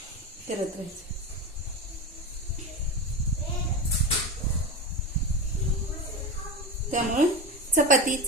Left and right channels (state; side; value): normal; both; correlation 0.22